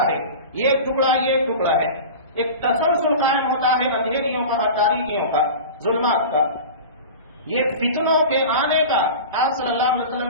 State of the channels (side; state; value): both; inverted; correlation -0.33